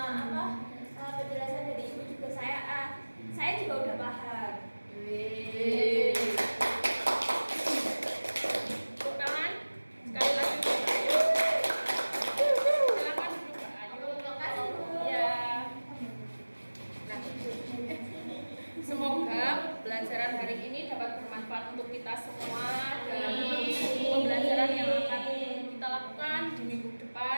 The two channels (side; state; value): both; inverted; correlation -1.00